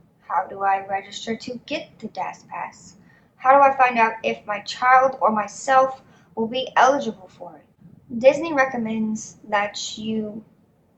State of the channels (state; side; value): identical; both; correlation 1.00